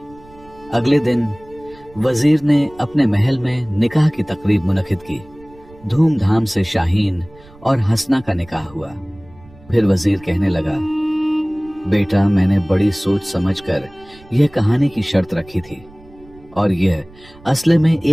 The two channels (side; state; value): right; noise; rumble, 24 dB below the sound